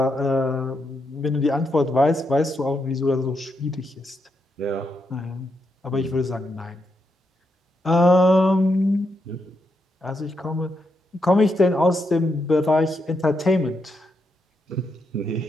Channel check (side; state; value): both; normal; correlation 0.82